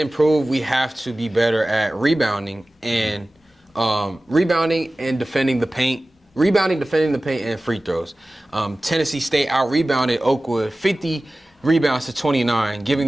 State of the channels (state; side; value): normal; both; correlation 0.97